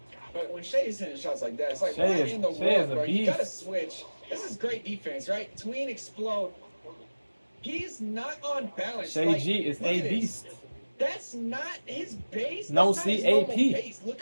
But when Shea's hitting shots like that, it's like, what in the world, bro? You gotta switch. This is great defense, right? Tween explode. He's not on balance. Shea G is a beast. That's not his base. No That's not his CAP. base. Look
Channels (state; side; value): inverted; both; correlation -1.00